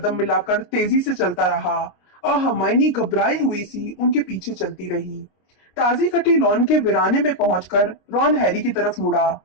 मिलाकर तेजी से चलता रहा और हरमाइनी घबराई हुई सी उनके पीछे चलती रही। ताजी कटी लॉन के वीराने में पहुंचकर रॉन हैरी की तरफ मुड़ा।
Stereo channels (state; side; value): late; right; 26 ms